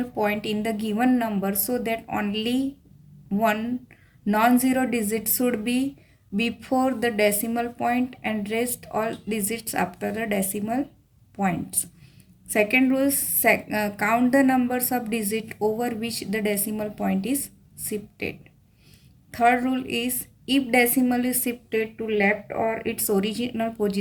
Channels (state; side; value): identical; both; correlation 1.00